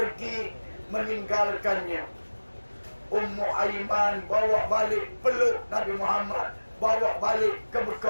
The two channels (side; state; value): both; inverted; correlation -1.00